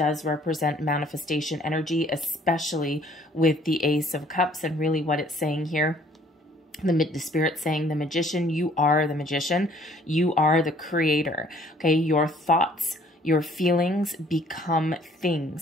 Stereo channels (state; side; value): normal; both; correlation 0.58